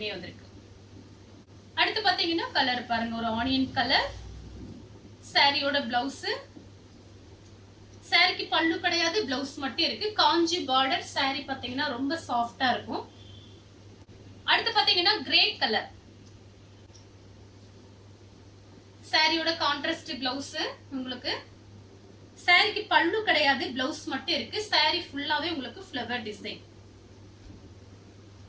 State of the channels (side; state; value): both; identical; correlation 1.00